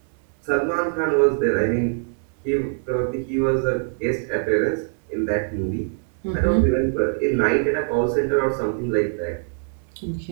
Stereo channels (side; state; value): left; silent; 63 dB below the other